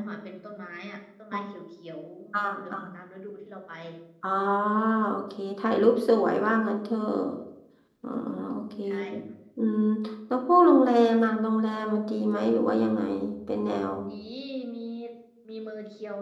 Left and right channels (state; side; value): identical; both; correlation 1.00